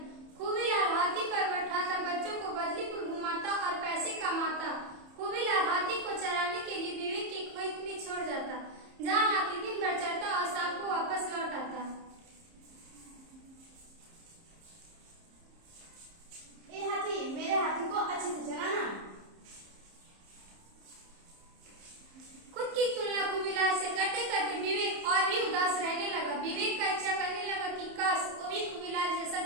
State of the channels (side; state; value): left; late; 30 ms